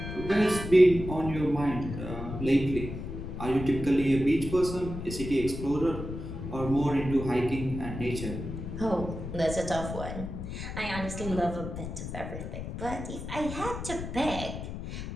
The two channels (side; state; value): left; noise; rumble, 7 dB below the sound